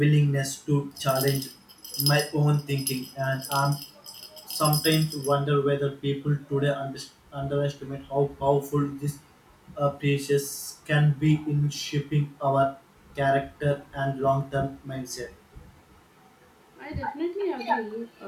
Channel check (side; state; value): both; identical; correlation 1.00